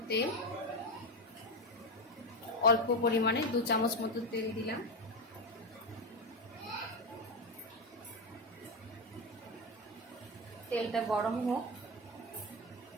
তেল। অল্প পরিমাণে 2 চামচ মতো তেল দিলাম। তেলটা গরম হোক।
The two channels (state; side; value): normal; both; correlation 0.13